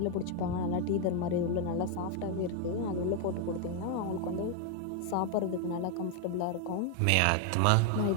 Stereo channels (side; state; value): both; different; correlation 0.01